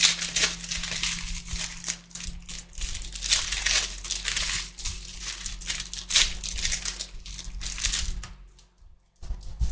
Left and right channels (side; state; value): both; identical; correlation 1.00